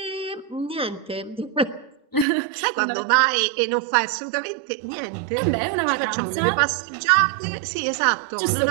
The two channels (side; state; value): left; drops out; at 2.2 s